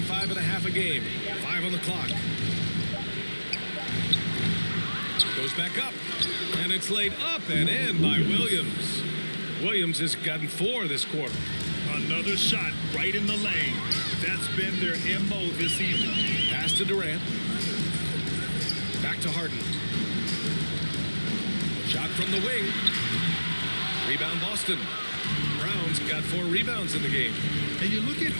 and a half a game. 5 on the clock. Goes back up. And it's laid up and in by Williams. Williams has gotten 4 this quarter. Another shot right in the lane. That's been their MO this evening. Pass to Durant. Back to Harden. Shot from the wing. Rebound Boston. Brown's got 4 rebounds in the game. And you look at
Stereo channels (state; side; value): inverted; both; correlation -1.00